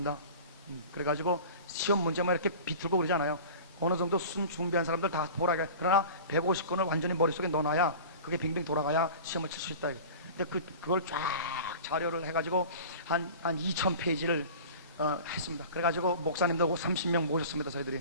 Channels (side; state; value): both; inverted; correlation -0.38